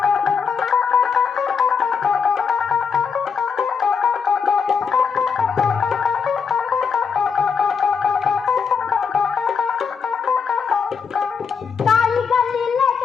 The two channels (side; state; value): right; quieter; 6.0 dB